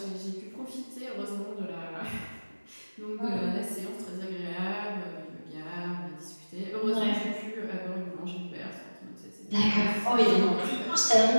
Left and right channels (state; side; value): inverted; both; correlation -1.00